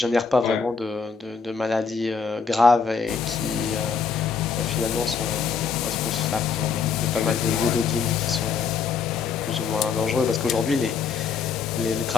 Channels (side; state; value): right; quieter; 5.7 dB